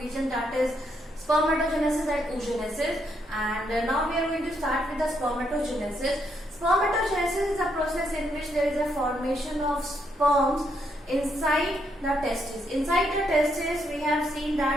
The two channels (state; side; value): normal; both; correlation 0.76